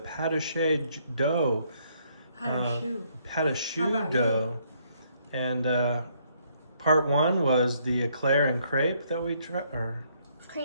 dough. Pâte about dough. And part 1 was the eclair and crepe that we tried, or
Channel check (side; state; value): both; inverted; correlation -0.69